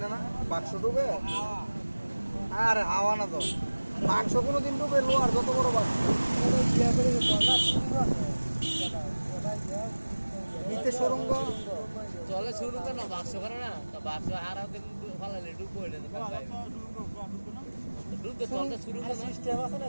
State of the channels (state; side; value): inverted; both; correlation -1.00